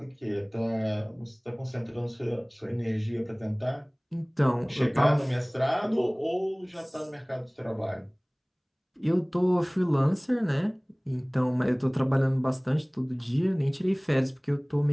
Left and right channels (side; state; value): both; identical; correlation 1.00